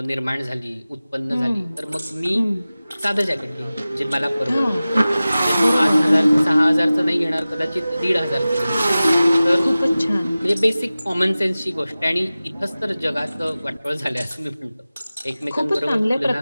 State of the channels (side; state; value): both; inverted; correlation -0.96